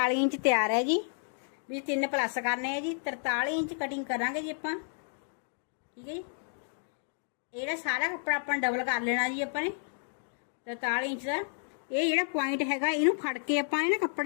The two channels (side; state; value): right; silent; digital silence